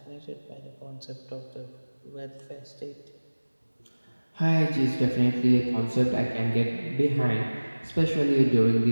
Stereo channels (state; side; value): inverted; both; correlation -1.00